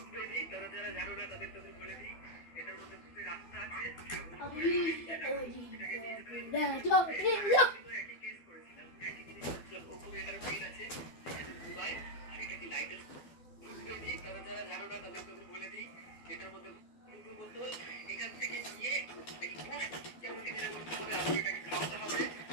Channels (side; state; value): right; late; 12 ms